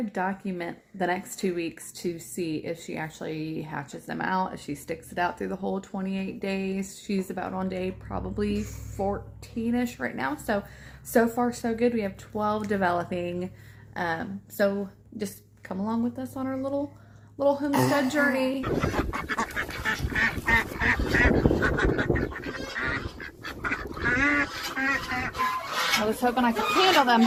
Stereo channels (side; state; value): both; identical; correlation 1.00